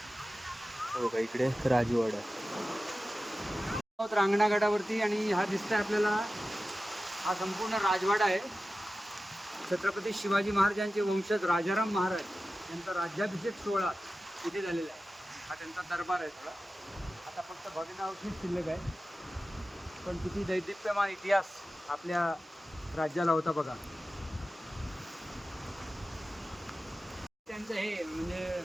बघा इकडे राजवाडा रांगणागडावरती आणि हा दिसतोय आपल्याला हा संपूर्ण राजवाडा आहे. छत्रपती शिवाजी महाराजांचे वंशज राजाराम महाराज यांचा राज्याभिषेक सोहळा इथे झालेला आहे. हा त्यांचा दरबार आहे सगळा. आता फक्त भग्नावशेष शिल्लक आहे, पण किती दैदिप्यमान इतिहास आपल्या राज्याला होता बघा. त्यांचं हे म्हणजे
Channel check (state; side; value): normal; both; correlation 0.94